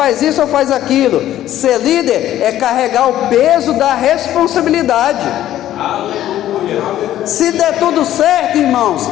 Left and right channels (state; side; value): quieter; right; 12.7 dB